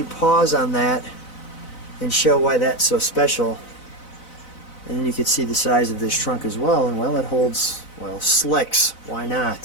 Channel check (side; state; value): right; late; 4.0 ms